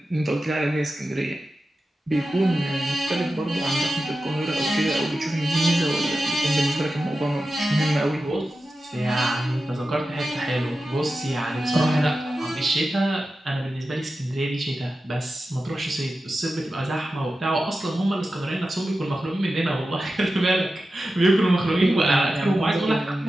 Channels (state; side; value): normal; both; correlation 0.92